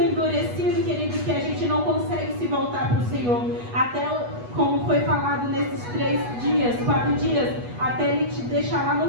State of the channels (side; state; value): left; late; 8.2 ms